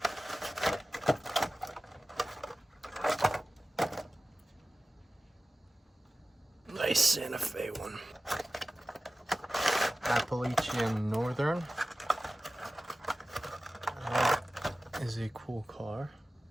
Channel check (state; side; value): normal; both; correlation 0.96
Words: Nice Santa Fe one. Appalachian Northern. That is a cool car.